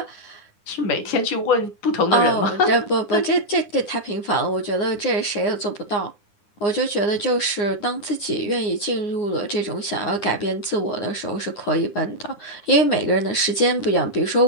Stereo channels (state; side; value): late; right; 9.8 ms